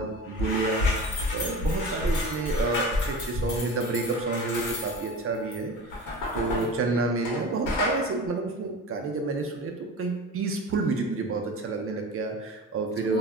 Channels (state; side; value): normal; both; correlation 0.33